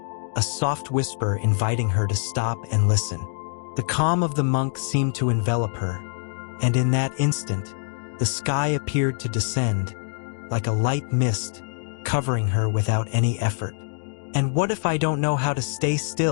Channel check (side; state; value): right; silent; digital silence